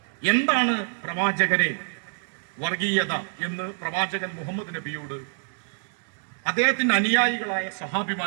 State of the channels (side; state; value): left; silent; digital silence